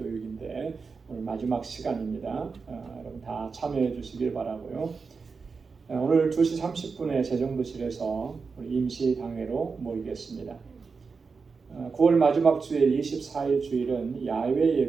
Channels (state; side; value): quieter; left; 4.9 dB